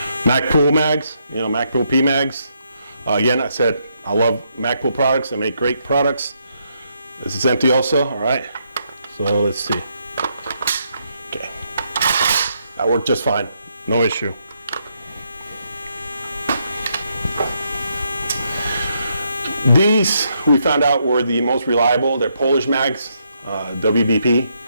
Magpul mags, Magpul P mags. Again, I said I love Magpul products. They make great products. This is empty also. All right. So let's see. Okay. That worked just fine. No issue. These we found out were the most reliable. They're Polish mags, WBP.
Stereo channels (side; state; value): both; inverted; correlation -0.77